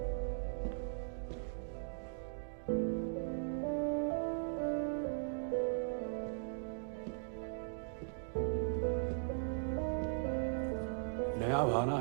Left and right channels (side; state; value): left; silent; digital silence